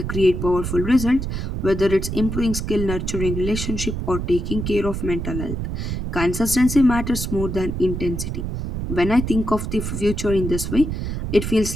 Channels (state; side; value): noise; right; rumble, 4 dB below the sound